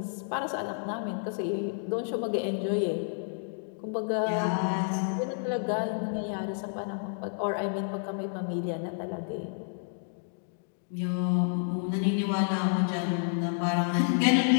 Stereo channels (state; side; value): silent; right; digital silence